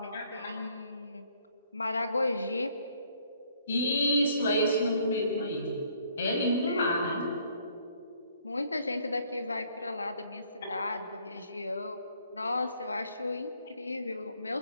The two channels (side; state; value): both; inverted; correlation -0.64